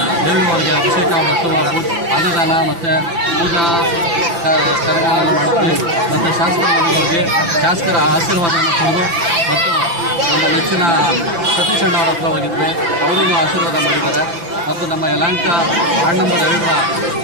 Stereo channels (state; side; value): late; left; 5.9 ms